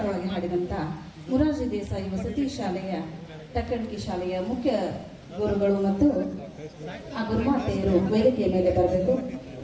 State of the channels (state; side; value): identical; both; correlation 1.00